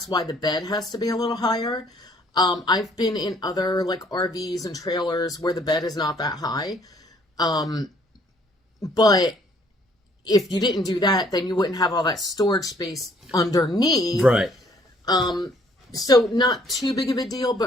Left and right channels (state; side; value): normal; both; correlation 0.62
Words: why the bed has to be a little higher. I've been in other like RVs and trailers where the bed is not that high. But if you didn't do that, then you wouldn't have all that storage space underneath. Right. So not too big of a deal,